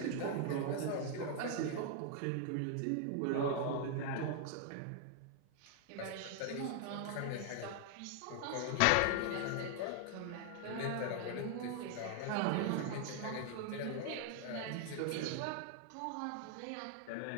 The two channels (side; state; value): both; different; correlation 0.00